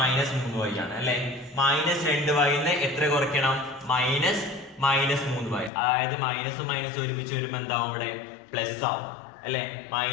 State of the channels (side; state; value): right; drops out; at 5.7 s